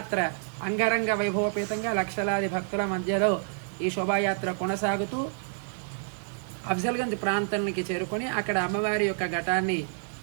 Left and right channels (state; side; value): silent; left; digital silence